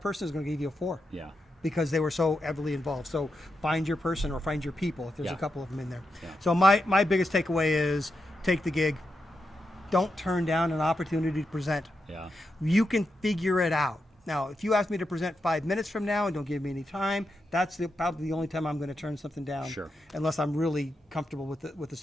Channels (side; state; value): both; normal; correlation 0.86